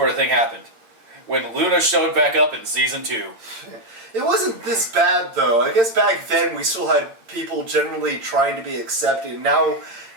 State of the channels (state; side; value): late; left; 8.8 ms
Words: of thing happened. When Luna showed back up in season 2. It wasn't this bad though. I guess back then we still had people generally trying to be accepting. Now